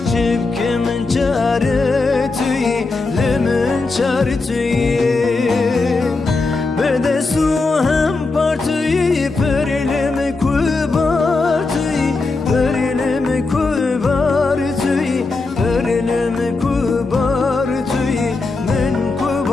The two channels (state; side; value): quieter; right; 3.7 dB